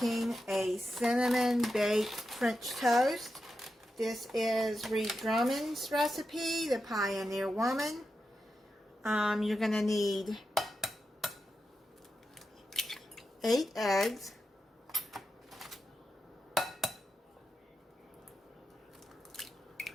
a cinnamon baked French toast. This is Reed Drummond's recipe, the Pioneer Woman. You're going to need 8 eggs,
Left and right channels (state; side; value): normal; both; correlation 0.89